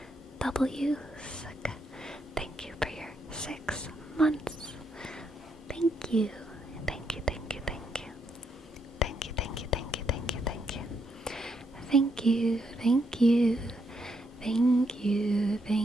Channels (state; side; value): normal; both; correlation 0.77